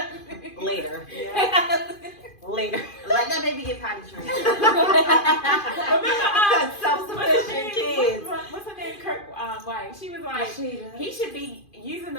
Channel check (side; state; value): right; late; 2.5 ms